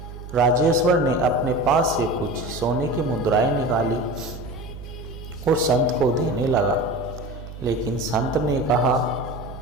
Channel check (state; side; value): noise; right; hum, 13 dB below the sound